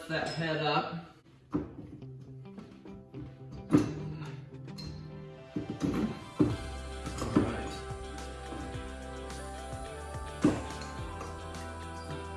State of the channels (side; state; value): both; identical; correlation 1.00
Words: that head up. Alright.